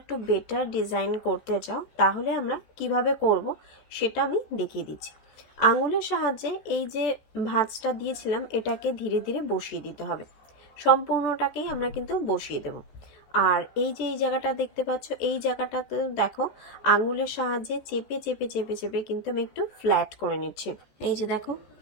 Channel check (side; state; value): right; late; 14 ms